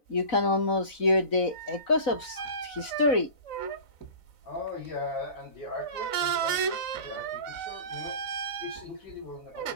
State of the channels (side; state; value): right; late; 4.0 ms